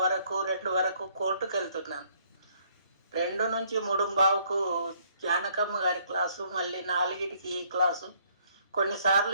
వరకు 2 వరకు కోర్టుకు వెళ్తున్నాను. 2 నుంచి 3:15కు జానకమ్మ గారి క్లాసు, మళ్ళీ 4కి ఈ క్లాసు. కొన్నిసార్లు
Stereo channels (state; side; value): inverted; both; correlation -0.65